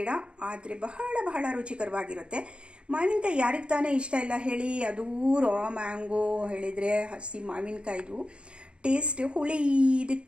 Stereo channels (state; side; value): late; left; 0.056 ms